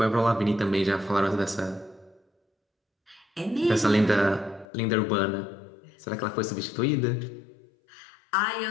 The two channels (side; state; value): right; drops out; at 4.7 s